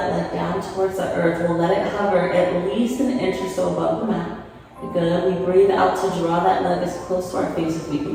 leg down towards the earth. We'll let it hover at least an inch or so above the mat. Good. We breathe out to draw that leg as close to our face as we can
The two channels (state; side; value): identical; both; correlation 1.00